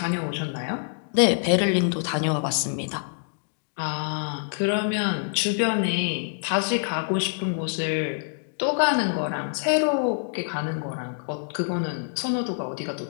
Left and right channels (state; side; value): silent; right; digital silence